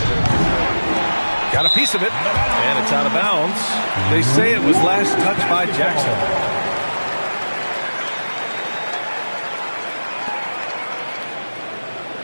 Got a piece of it. And it's out of bounds. They say it was last touched by Jackson.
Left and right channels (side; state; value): both; inverted; correlation -1.00